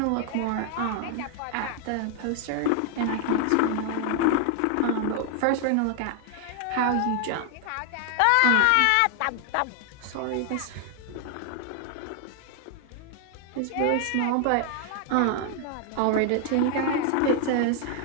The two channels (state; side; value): different; both; correlation 0.00